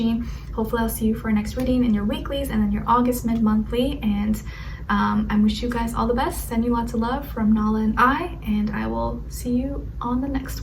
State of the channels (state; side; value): identical; both; correlation 1.00